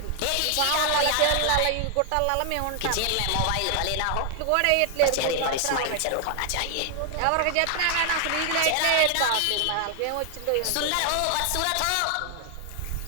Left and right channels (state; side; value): different; both; correlation 0.00